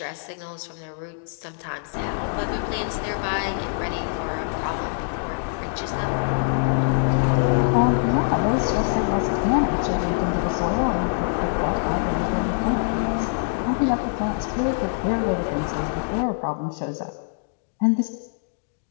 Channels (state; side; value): silent; right; digital silence